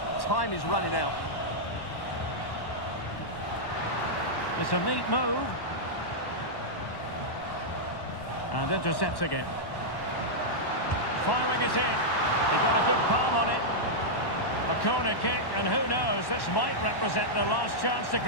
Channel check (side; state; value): right; late; 1.1 ms